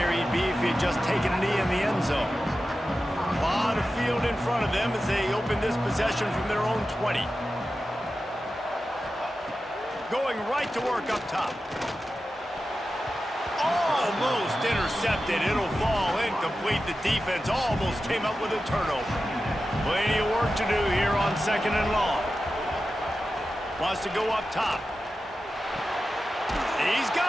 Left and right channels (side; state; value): both; normal; correlation 0.93